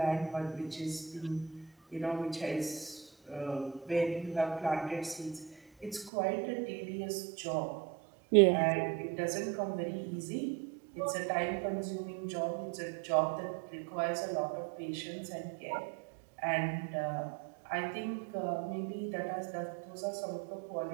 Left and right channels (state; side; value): drops out; left; at 6.1 s